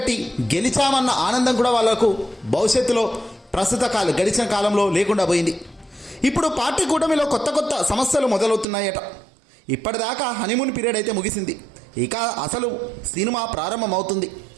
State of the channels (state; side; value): drops out; left; at 8.7 s